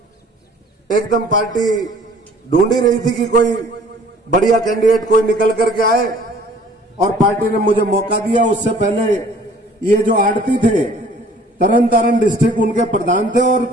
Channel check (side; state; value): both; normal; correlation 0.53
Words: एकदम पार्टी ढूंढ ही रही थी कि कोई बढ़िया कैंडिडेट कोई निकल करके आए, और पार्टी ने मुझे मौका दिया। उससे पहले ये जो आड़ती थे, तरन तारण डिस्ट्रिक्ट उनके प्रधान थे और